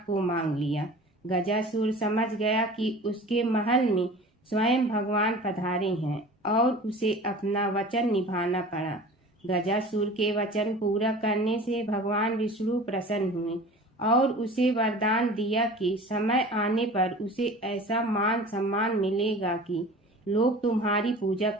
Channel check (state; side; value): normal; both; correlation 0.40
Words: को मांग लिया। गजासुर समझ गया कि उसके महल में स्वयं भगवान पधारे हैं और उसे अपना वचन निभाना पड़ा। गजासुर के वचन पूरा करने से भगवान विष्णु प्रसन्न हुए और उसे वरदान दिया कि समय आने पर उसे ऐसा मान सम्मान मिलेगा कि लोग तुम्हारी पूजा